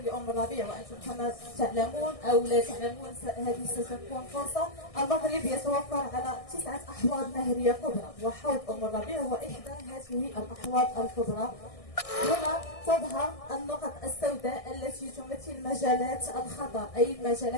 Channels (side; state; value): right; late; 1.6 ms